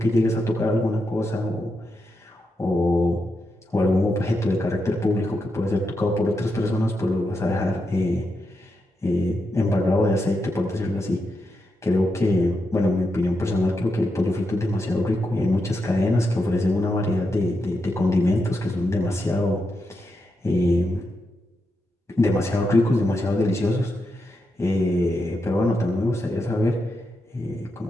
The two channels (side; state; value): both; normal; correlation 0.85